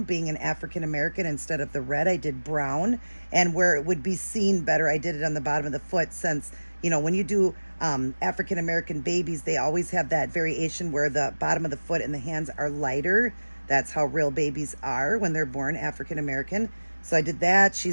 Being an African American, instead of the red, I did brown. And where it would be seen better, I did it on the bottom of the foot, since, you know, when you do African American babies, they always have that variation where the bottom of the foot and the hands are lighter. That's how real babies are when they're born African American. So I did that.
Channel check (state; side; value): inverted; both; correlation -1.00